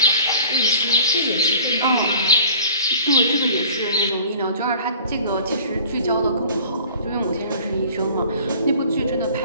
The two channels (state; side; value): inverted; both; correlation -0.47